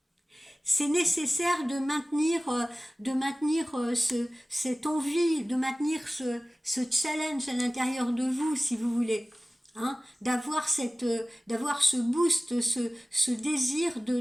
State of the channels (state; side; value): normal; both; correlation 0.97